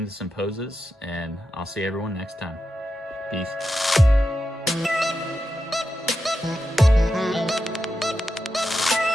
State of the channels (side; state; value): both; normal; correlation 0.88